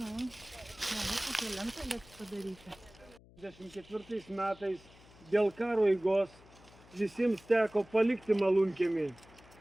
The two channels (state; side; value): noise; left; hum, 24 dB below the sound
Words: Kokia lenta bet padaryta. 1924 metais dėl karo eigos visiems teko palikti Malūnkiemį.